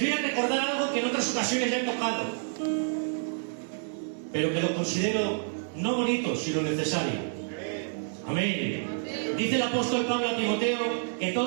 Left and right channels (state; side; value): silent; left; 59 dB below the other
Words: a recordar algo que en otras ocasiones ya he tocado, pero que lo considero no bonito, sino necesario. Amén. Dice el apóstol Pablo a Timoteo que